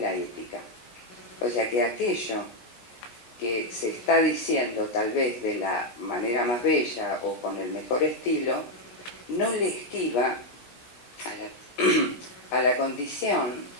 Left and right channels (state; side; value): late; right; 17 ms